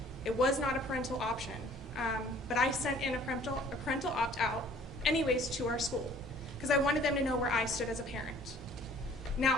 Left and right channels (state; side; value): normal; both; correlation 0.54